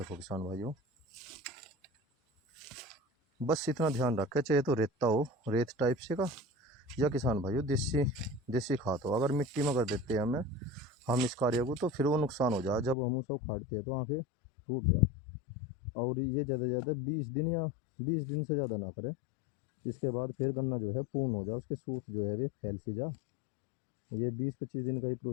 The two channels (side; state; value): right; drops out; at 13.0 s